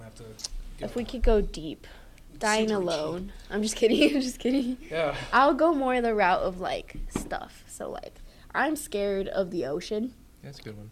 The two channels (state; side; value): identical; both; correlation 1.00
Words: have to. If we could go deep, dying Super alone. I'm just kidding. I'm just kidding. cheap. Yeah. I'll go more the route of like stuff. So like I'm scared of the ocean, That's a good one.